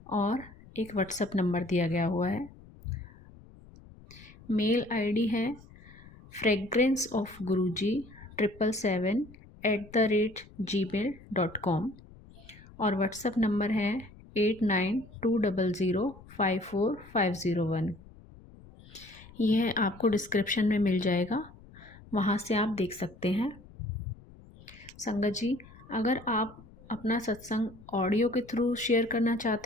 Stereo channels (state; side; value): noise; left; rumble, 21 dB below the sound